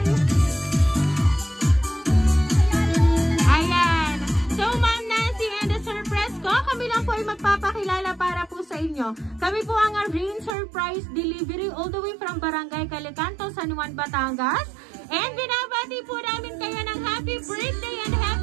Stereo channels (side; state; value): left; drops out; at 10.6 s